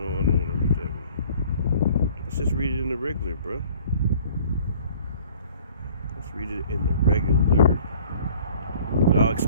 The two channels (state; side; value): inverted; both; correlation -0.52